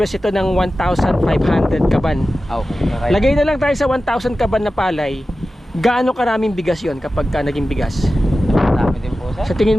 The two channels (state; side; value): normal; both; correlation 0.94